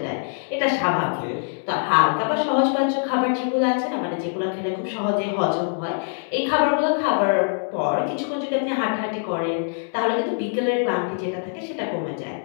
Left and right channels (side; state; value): right; silent; digital silence